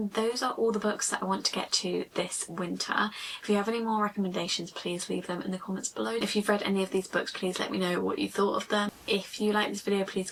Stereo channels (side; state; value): both; identical; correlation 1.00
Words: those are all the books that I want to get to this winter. If you have any more recommendations, please leave them in the comments below. If you've read any of these books, please let me know what you thought of them. If you like this video, please